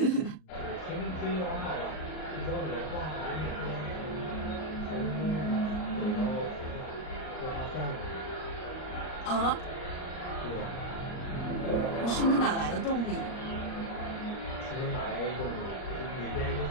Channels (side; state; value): right; late; 38 ms